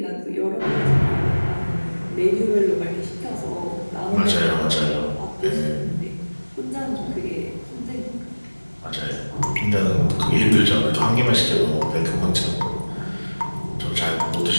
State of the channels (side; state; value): both; inverted; correlation -1.00